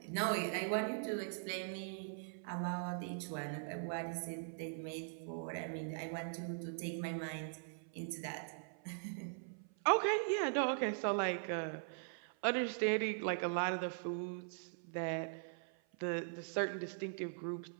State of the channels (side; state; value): left; silent; 50 dB below the other